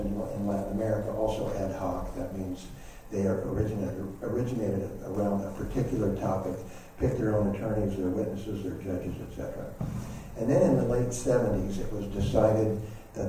Latin America, also ad hoc. That means they are originated around a particular topic, pick their own attorneys, their witnesses, their judges, etc. And then in the late 70s, it was decided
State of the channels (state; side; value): identical; both; correlation 1.00